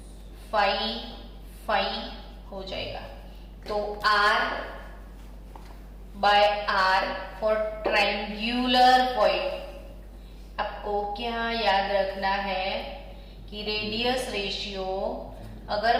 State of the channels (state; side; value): identical; both; correlation 1.00